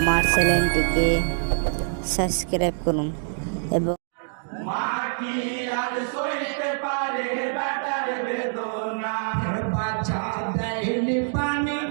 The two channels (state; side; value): silent; left; digital silence